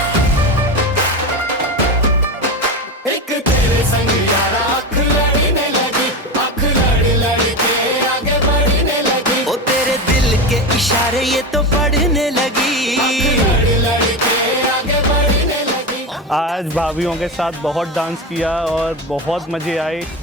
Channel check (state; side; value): normal; both; correlation 0.20